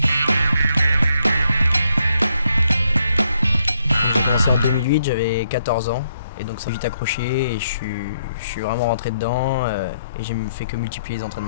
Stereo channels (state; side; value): inverted; both; correlation -0.75